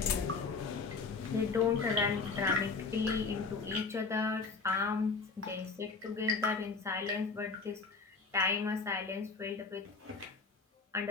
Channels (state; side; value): quieter; right; 4.4 dB